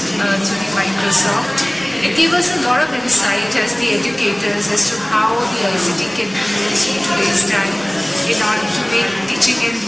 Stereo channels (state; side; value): noise; right; rumble, 27 dB below the sound